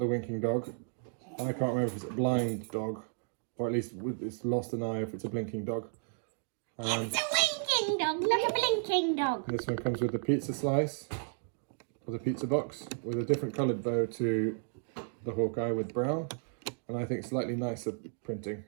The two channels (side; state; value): left; silent; digital silence